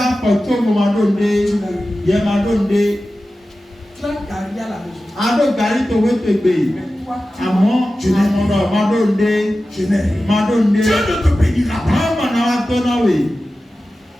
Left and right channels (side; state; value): both; normal; correlation 0.94